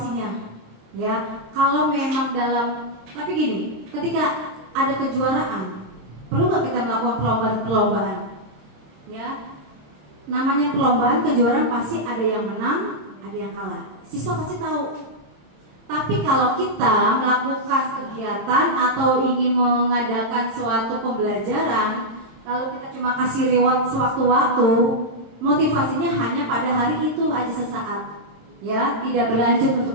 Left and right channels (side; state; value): left; late; 26 ms